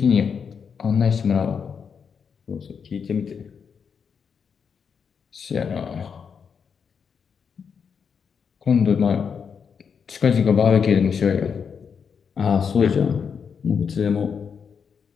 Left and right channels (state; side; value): quieter; right; 6.5 dB